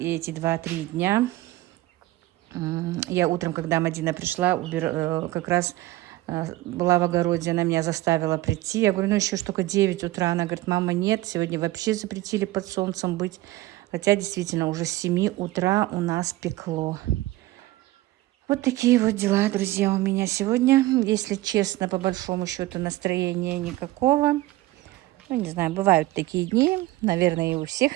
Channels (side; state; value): left; quieter; 17.5 dB